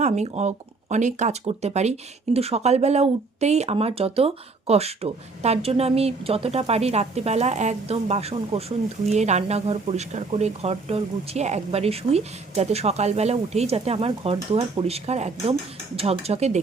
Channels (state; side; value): quieter; left; 4.0 dB